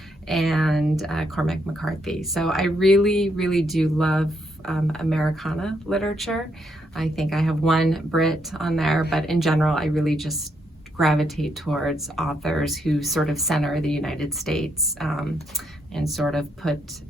and Cormac McCarthy. So I really, really do love Americana literature. I think I have one Brit on there, but in general, I really just gravitate towards authors who sort of center the United States and sort of put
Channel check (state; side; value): normal; both; correlation 0.76